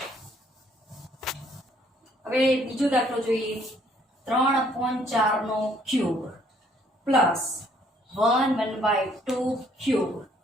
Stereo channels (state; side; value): normal; both; correlation 0.64